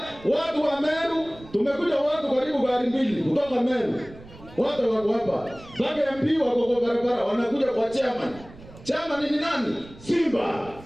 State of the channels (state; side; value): noise; right; rumble, 20 dB below the sound